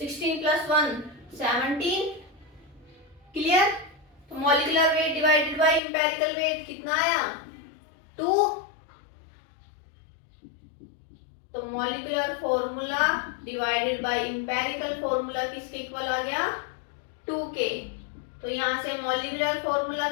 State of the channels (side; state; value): right; drops out; at 5.8 s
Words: + 1 17। क्लियर? तो molecular weight divided by empirical weight कितना आया, 2। तो molecular formula divided by empirical formula किसके इक्वल आ गया, 2 के। तो यहां से मॉलिक्यूलर फॉर्मूला